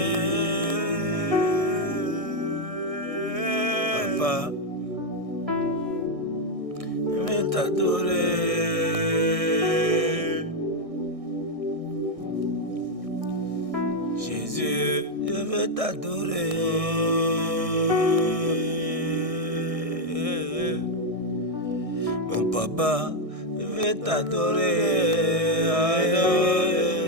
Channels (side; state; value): left; late; 1.6 ms